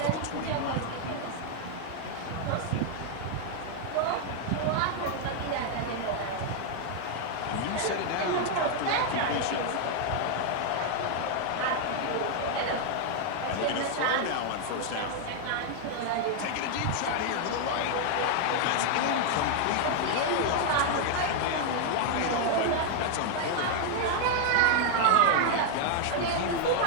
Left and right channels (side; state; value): both; different; correlation 0.00